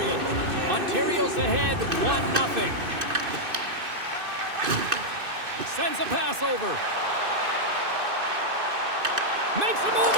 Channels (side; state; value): left; late; 2.6 ms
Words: Ontario's ahead 1-0. Sends a pass over. Makes a move